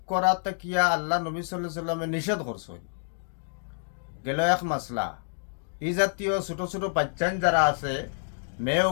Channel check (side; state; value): right; silent; digital silence